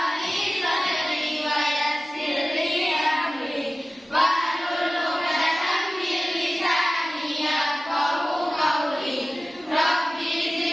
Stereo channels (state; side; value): normal; both; correlation 0.96